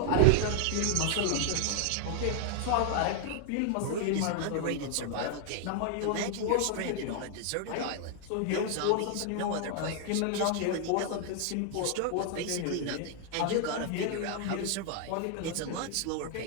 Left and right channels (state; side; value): different; both; correlation 0.00